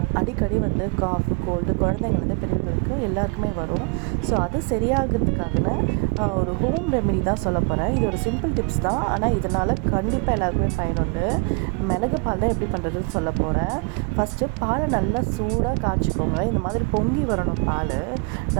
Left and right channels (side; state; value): left; quieter; 29.9 dB